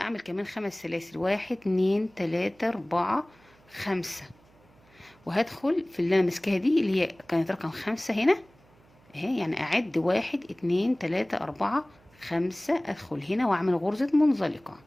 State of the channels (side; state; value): right; noise; hum, 29 dB below the sound